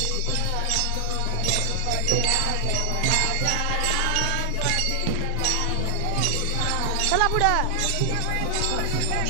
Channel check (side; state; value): both; different; correlation 0.00